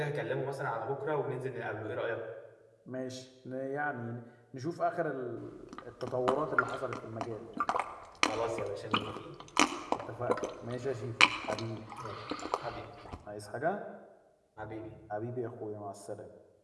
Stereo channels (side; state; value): both; identical; correlation 1.00